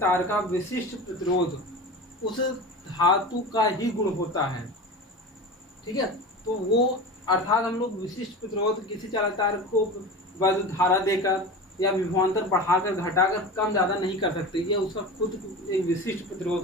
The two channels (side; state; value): both; normal; correlation 0.30